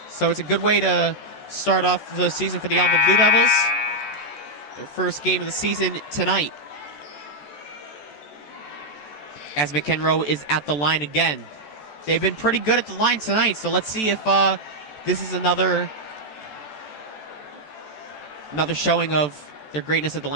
So it's a good way to start off the season for the Ellenville Blue Devils. Their first game of the season tonight. As McEnroe is at the line again. They've been pretty good at the line tonight, so let's see if this is another showing of their greatness at the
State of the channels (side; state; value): right; late; 14 ms